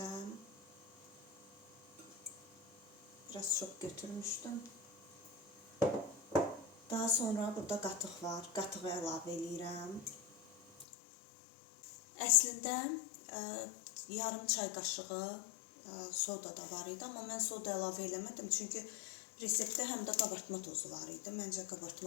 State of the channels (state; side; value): drops out; right; at 10.9 s